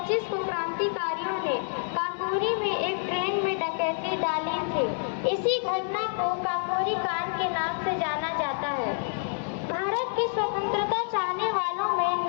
को क्रांतिकारियों ने काकोरी में एक ट्रेन में डकैती डाली थी। इसी घटना को काकोरी कांड के नाम से जाना जाता है। भारत की स्वतंत्रता चाहने वालों में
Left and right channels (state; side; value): silent; right; 59 dB below the other